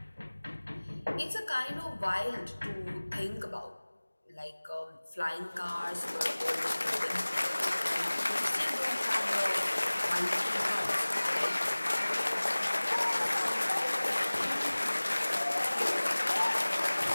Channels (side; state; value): both; inverted; correlation -1.00